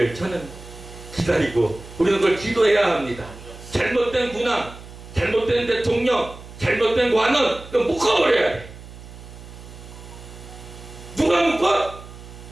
저는 기다리고 우리는 그걸 기도해야 합니다. 잘못된 군왕, 잘못된 대통령, 잘못된 관원, 그거 묶어버려야 돼. 누가 묶어?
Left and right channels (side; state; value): right; noise; hum, 16 dB below the sound